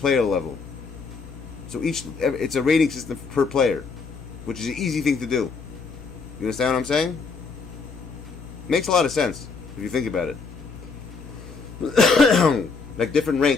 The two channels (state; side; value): quieter; right; 4.7 dB